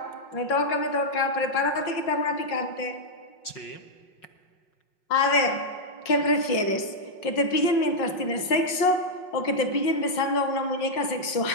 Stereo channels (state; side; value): late; right; 5.5 ms